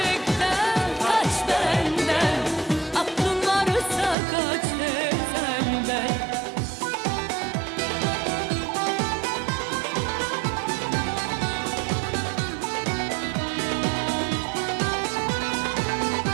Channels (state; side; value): drops out; left; at 4.2 s